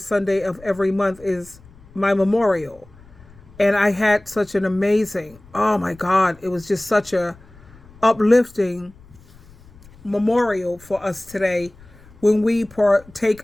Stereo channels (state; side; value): noise; left; rumble, 24 dB below the sound